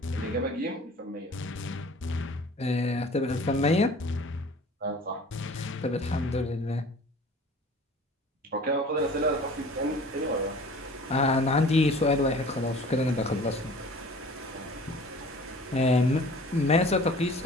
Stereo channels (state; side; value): normal; both; correlation 0.46